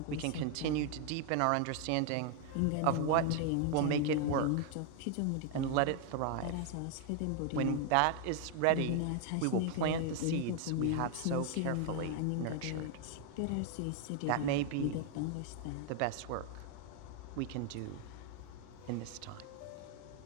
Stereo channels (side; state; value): both; different; correlation 0.00